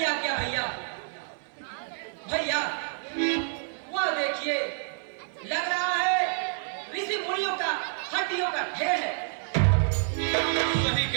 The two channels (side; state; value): left; silent; digital silence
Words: आज्ञा भैया। भैया वह देखिए, लग रहा है ऋषि मुनियों का हड्डियों का ढेर है। सही